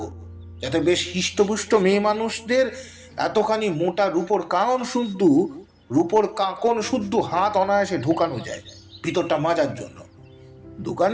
যাতে বেশ হিষ্টপুষ্ট মেয়ে মানুষদের এতখানি মোটা রূপোর কারণ শুদ্ধ রূপোর কাঁকন শুদ্ধ হাত অনায়াসে ঢোকানো যায় ভিতরটা মাজার জন্য।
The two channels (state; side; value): identical; both; correlation 1.00